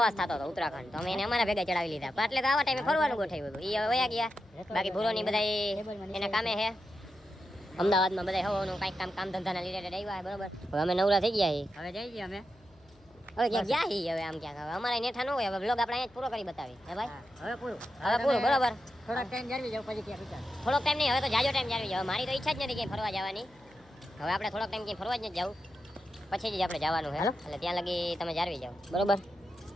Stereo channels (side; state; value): left; noise; hum, 29 dB below the sound